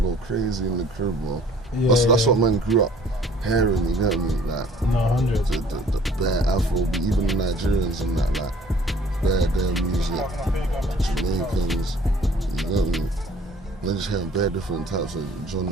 crazy in the crib, bro. That's what man grew up hearing, you get me? Like, no, 100. The bare Afro, even the Nigerians and that, like, bare music, Jamaicans, you get me? They're just hearing bare different types of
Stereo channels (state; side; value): normal; both; correlation 0.54